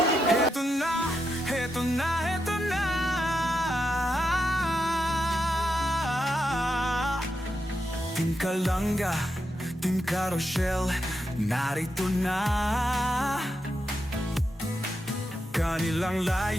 Heto na Team Kalanga, Team Carousel, narito na. Kanilang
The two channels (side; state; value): both; normal; correlation 0.85